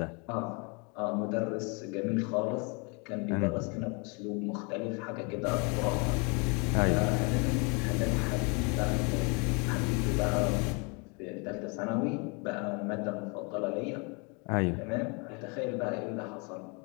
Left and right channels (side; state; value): right; quieter; 32.8 dB